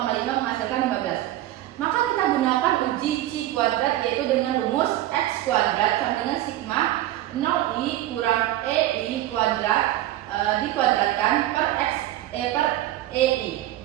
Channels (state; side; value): quieter; left; 14.6 dB